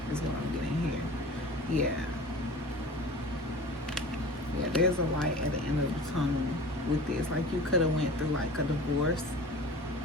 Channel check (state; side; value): normal; both; correlation 0.38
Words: is what I'm getting here. Yeah, there's a light at the end of the tunnel with this. Like, you could have went through like a divorce